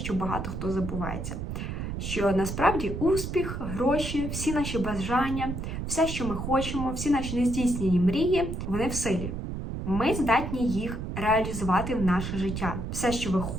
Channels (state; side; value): noise; right; rumble, 5 dB below the sound